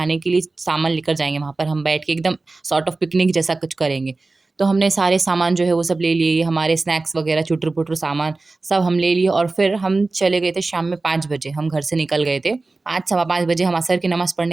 के लिए सामान लेकर जाएंगे। वहाँ पर हम बैठ के एकदम सॉर्ट ऑफ पिकनिक जैसा कुछ करेंगे। तो हमने सारे सामान जो है वो सब ले लिए, हमारे स्नैक्स वगैरह चुटर पुटर सामान सब हम ले लिए। और फिर हम चले गए थे शाम में 5 बजे, हम घर से निकल गए थे। 5 सवा 5 बजे हम असर की नमाज़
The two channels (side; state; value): left; quieter; 3.4 dB